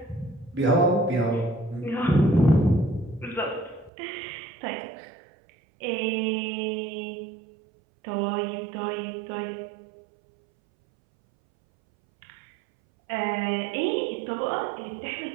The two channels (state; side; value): drops out; left; at 3.9 s